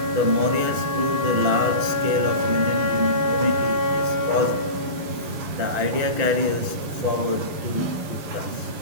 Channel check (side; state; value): left; late; 6.0 ms